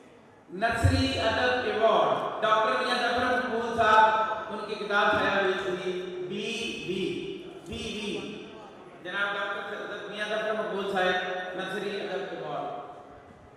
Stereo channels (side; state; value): both; identical; correlation 1.00